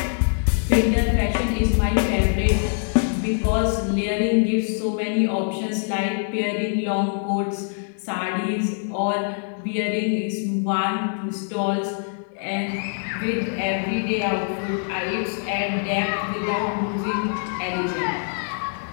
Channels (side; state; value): right; silent; digital silence